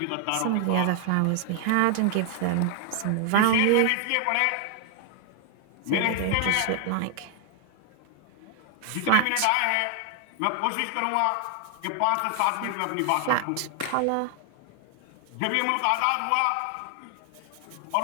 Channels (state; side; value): different; both; correlation 0.00